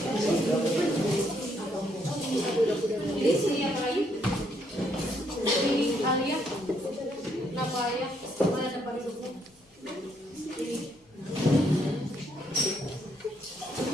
Jadi sini apa lagi? Ini Alia. Kenapa Alia? Mana tempat duduknya? Ini.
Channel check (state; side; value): normal; both; correlation 0.72